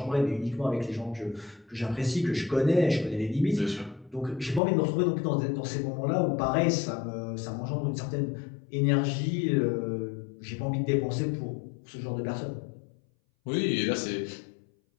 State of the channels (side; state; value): right; drops out; at 4.6 s